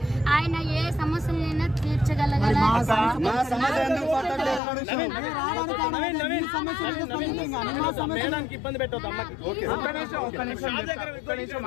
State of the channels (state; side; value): drops out; right; at 4.6 s